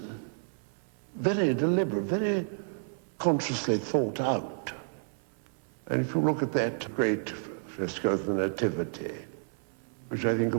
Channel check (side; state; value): left; silent; 57 dB below the other